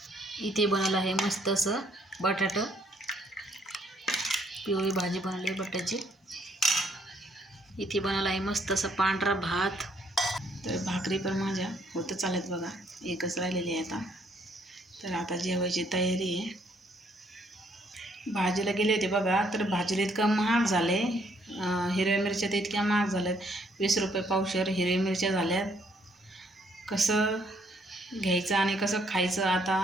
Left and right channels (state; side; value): normal; both; correlation 0.68